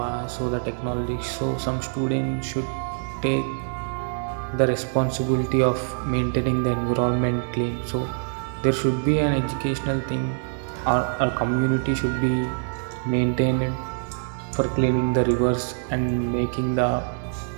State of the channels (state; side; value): silent; left; 62 dB below the other